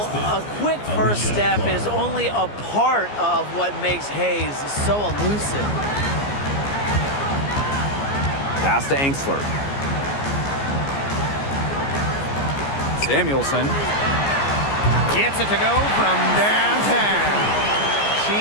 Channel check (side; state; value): right; late; 14 ms